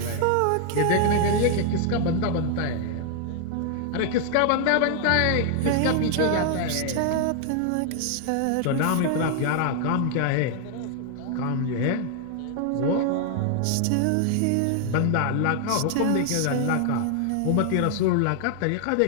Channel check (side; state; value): both; different; correlation 0.00